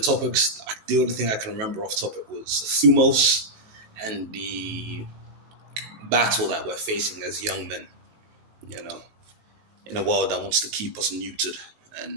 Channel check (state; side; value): late; left; 19 ms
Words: the only thing I can remember off topic was Thumos and the battle that we're facing as young men, you know, in a world that wants to keep us neutered